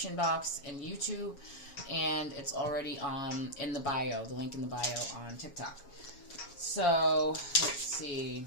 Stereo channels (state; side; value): late; right; 7.2 ms